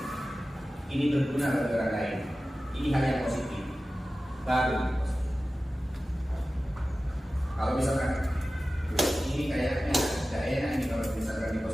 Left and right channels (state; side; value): normal; both; correlation 0.95